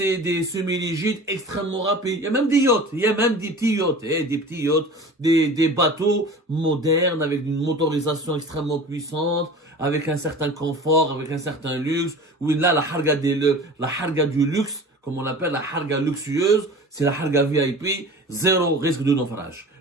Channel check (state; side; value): normal; both; correlation 0.39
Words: des semi-rigides extrêmement rapides. Il y a même des yachts, il y a même des petits yachts, des bateaux modernes avec une motorisation extrêmement puissante, avec un certain confort, avec un certain luxe. Oui, là, la harga du luxe, comme on l'appelle, la harga luxueuse, c'est la harga VIP, zéro risque de naufrage.